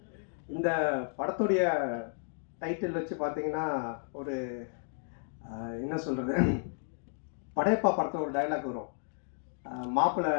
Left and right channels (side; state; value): right; silent; 56 dB below the other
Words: இந்த படத்துடைய டைட்டில் வச்சு பார்த்தீங்கன்னா ஒரு என்ன சொல்கிறது, படையப்பா படத்தில் ஒரு டைலாக் வரும், மாப்பிள்ளை